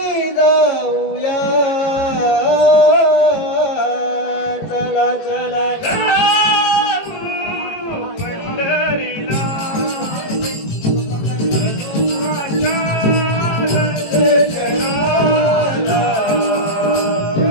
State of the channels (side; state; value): right; late; 18 ms